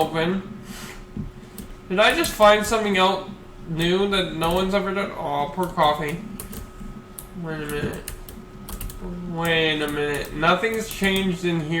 Did I just find something out new that no one's ever done? Oh, poor coffee. Wait a minute. Wait a minute. Nothing's changed in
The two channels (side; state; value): both; identical; correlation 1.00